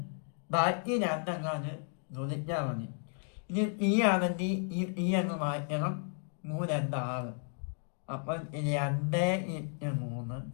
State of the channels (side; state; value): right; silent; 55 dB below the other